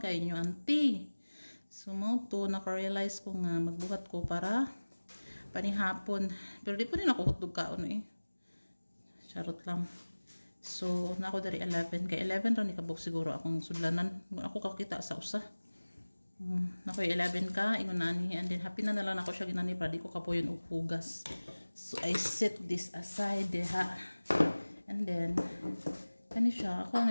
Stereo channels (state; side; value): inverted; both; correlation -1.00